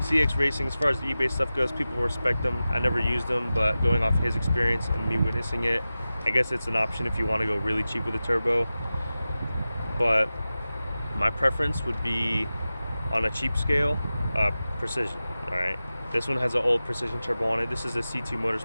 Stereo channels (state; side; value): inverted; both; correlation -0.95